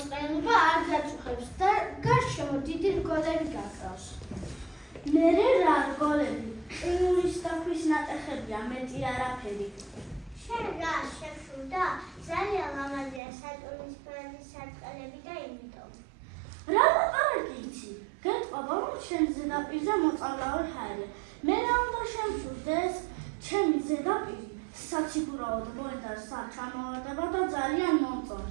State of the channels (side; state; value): left; drops out; at 13.2 s